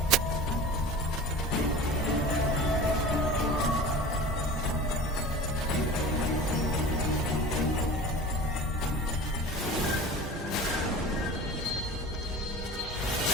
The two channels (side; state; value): both; normal; correlation 0.36